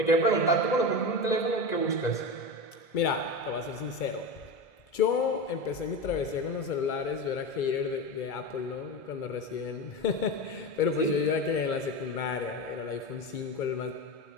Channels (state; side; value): late; right; 2.3 ms